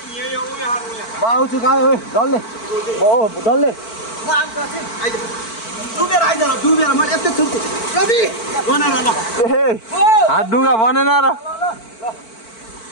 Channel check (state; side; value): late; right; 4.5 ms